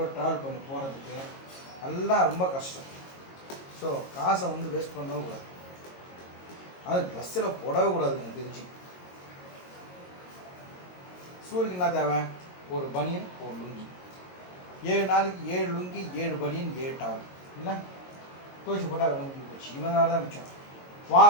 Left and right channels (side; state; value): right; late; 22 ms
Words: ட்ராவல் பண்ணி போகிறதுக்கு எல்லாம் ரொம்ப கஷ்டம். ஸோ காசை வந்து வேஸ்ட் பண்ணவே கூடாது. அது ட்ரெஸ்ஸில் போடவே கூடாது எனக்கு தெரிஞ்சு. ஸ்கூலுக்கு என்ன தேவை? ஒரு பனியன், ஒரு லுங்கி. 7 நாளைக்கு 7 லுங்கி, 7 பனியன், 7 டவல் இல்லை துவைச்சி போட்டால் வேலை முடிஞ்சு போச்சு. இவனால தான் மிச்சம்.